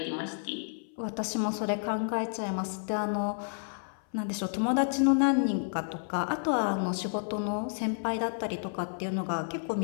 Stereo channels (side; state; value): right; silent; 55 dB below the other